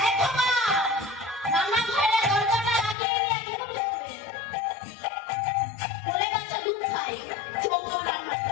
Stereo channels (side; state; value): right; drops out; at 3.0 s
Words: রান্নাঘরে দরজাটা লাগিয়ে দিয়ে কি করবে? বলে বাচ্চা দুধ খায়, চোখ রান্না